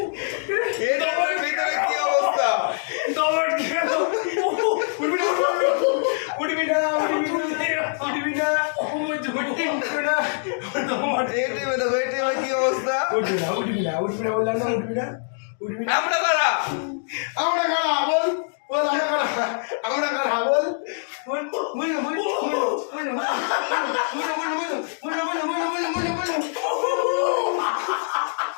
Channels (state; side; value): silent; right; digital silence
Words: এটিএম এর ভিতরে কি অবস্থা এটিএমে দেখো এটিএমে কি অবস্থা আমরা কারা